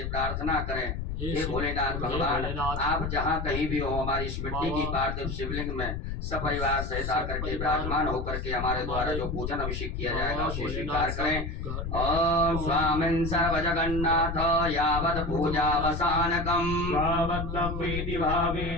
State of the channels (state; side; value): noise; left; rumble, 4 dB below the sound